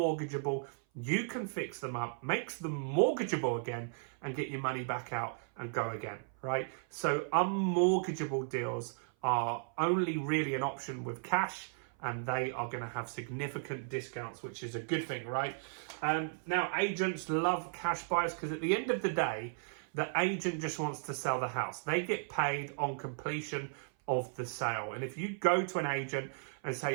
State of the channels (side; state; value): left; silent; 54 dB below the other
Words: you can fix them up, makes them mortgageable again, and get your money back out and go again, right? So unmortgageable deals are only really an option with cash, and they are going to have significant discounts, which is a good thing, right? Now, agents love cash buyers because at the end of the day, the agent just wants to sell the house. They get paid on completion of the sale. And if you go to an agent and